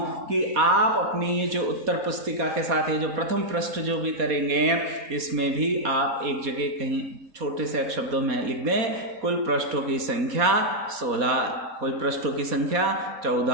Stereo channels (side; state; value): left; late; 4.2 ms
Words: कि आप अपनी ये जो उत्तर पुस्तिका के साथ ये जो प्रथम पृष्ठ जो भी करेंगे इसमें भी आप एक जगह कहीं छोटे से शब्दों में लिख दें, कुल पृष्ठों की संख्या 16, कुल पृष्ठों की संख्या